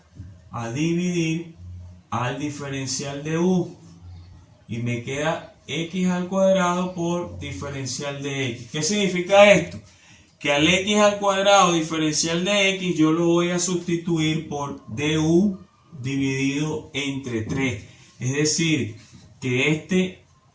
a dividir al diferencial de u y me queda x al cuadrado por diferencial de x. ¿Qué significa esto? Que al x al cuadrado diferencial de x yo lo voy a sustituir por du dividido entre 3. Es decir, que este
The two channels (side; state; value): both; identical; correlation 1.00